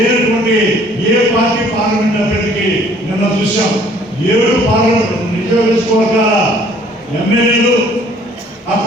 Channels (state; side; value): normal; both; correlation 0.58